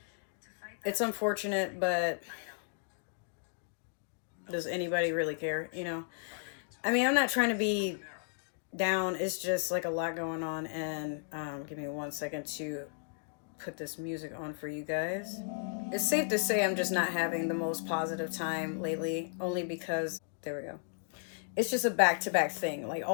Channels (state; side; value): silent; right; digital silence